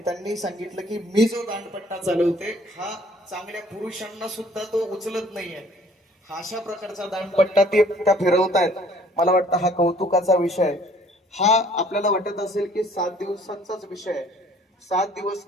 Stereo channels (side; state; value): both; normal; correlation 0.57